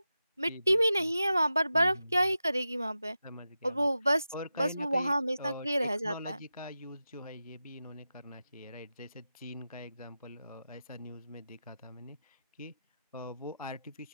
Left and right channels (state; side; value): inverted; both; correlation -0.92